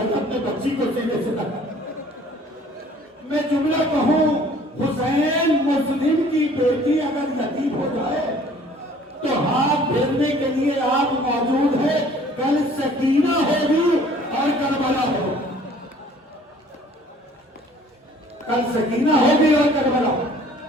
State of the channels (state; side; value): normal; both; correlation 0.54